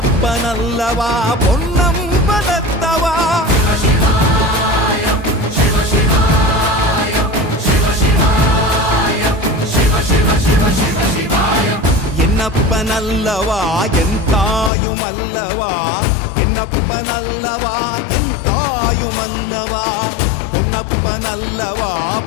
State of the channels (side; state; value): right; drops out; at 14.7 s